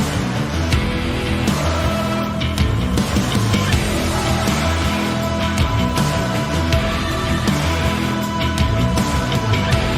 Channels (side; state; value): both; identical; correlation 1.00